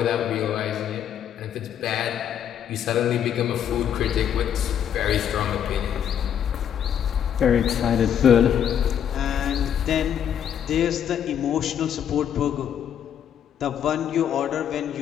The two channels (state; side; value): quieter; right; 9.2 dB